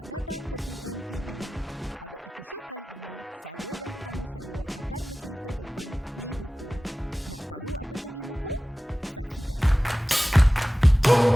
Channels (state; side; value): normal; both; correlation 0.95